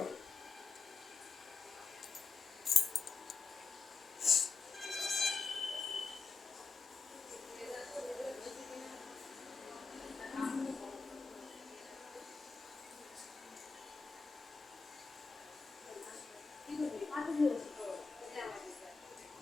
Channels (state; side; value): quieter; right; 4.8 dB